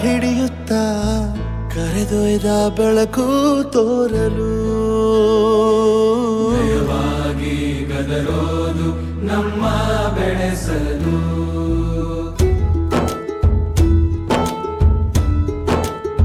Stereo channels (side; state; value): both; identical; correlation 1.00